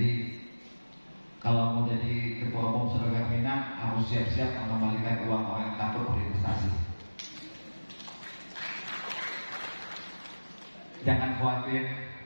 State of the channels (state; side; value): inverted; both; correlation -1.00